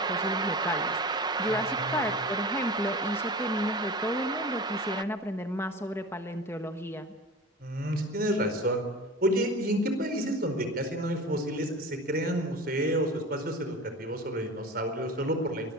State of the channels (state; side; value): normal; both; correlation 0.34